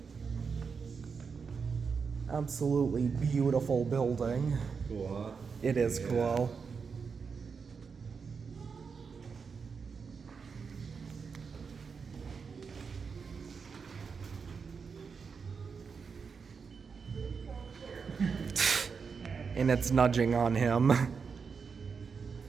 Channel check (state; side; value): quieter; left; 5.6 dB